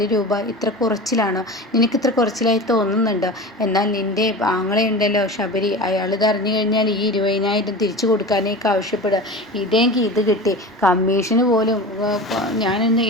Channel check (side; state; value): both; normal; correlation 0.32